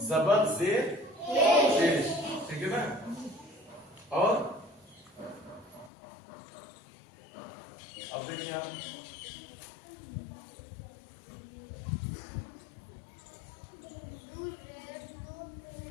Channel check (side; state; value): right; drops out; at 5.9 s